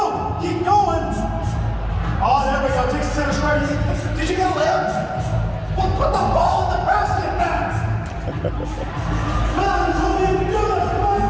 Keep going. Oh, there we go. Takes the center square. Did you get a layup? Well, put the ball in the basket, man. Come on, told you to do this. Come on,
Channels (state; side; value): identical; both; correlation 1.00